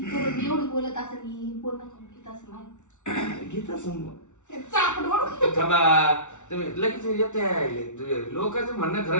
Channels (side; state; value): right; late; 0.84 ms